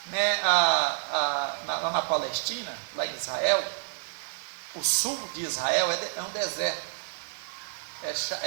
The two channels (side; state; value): left; silent; digital silence